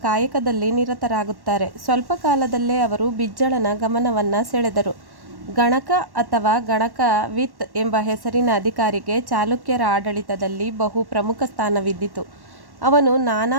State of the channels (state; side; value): late; left; 1.1 ms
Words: ನಿರತರಾಗುತ್ತಾರೆ. ಸ್ವಲ್ಪ ಕಾಲದಲ್ಲೇ ಅವರು ಬಿಜ್ಜಳನ ಗಮನವನ್ನು ಸೆಳೆದರು. ಗಣಕ ಅಥವಾ ಗಣಕ ವಿತ್ ಎಂಬ ಹೆಸರಿನ ಅಧಿಕಾರಿಗೆ ಚಾಲುಕ್ಯರ ಆಡಳಿತದಲ್ಲಿ ಬಹು ಪ್ರಮುಖ ಸ್ಥಾನವಿದ್ದಿತು. ಅವನು